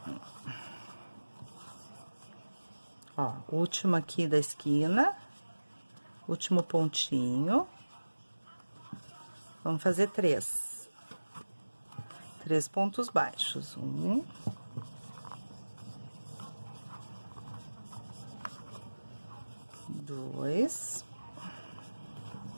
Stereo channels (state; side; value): inverted; both; correlation -1.00